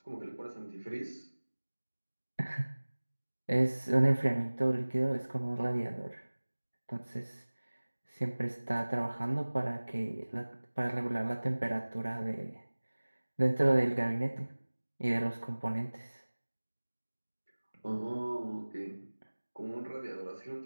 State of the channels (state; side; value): inverted; both; correlation -1.00